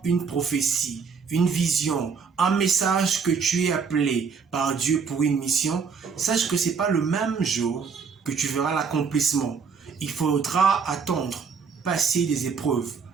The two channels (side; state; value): left; quieter; 5.7 dB